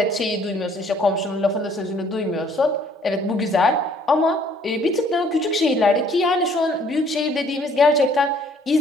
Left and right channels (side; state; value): both; normal; correlation 0.60